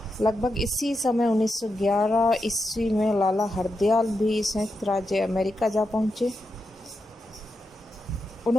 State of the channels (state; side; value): normal; both; correlation 0.86